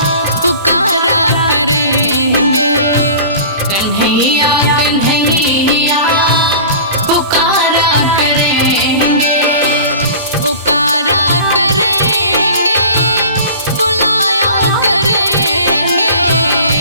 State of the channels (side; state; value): both; inverted; correlation -0.40